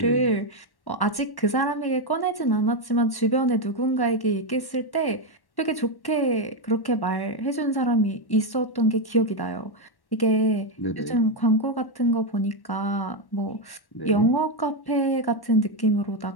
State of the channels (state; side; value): late; right; 1.1 ms